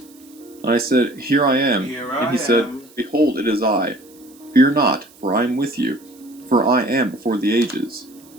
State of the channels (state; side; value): noise; right; hiss, 26 dB below the sound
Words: And I said, Here I am. Here And I he said, am. Behold, it is I. Fear not, for I am with you. For I am before the ages,